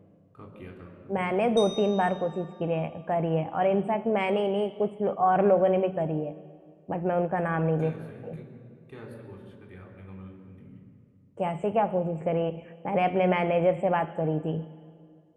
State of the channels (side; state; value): both; identical; correlation 1.00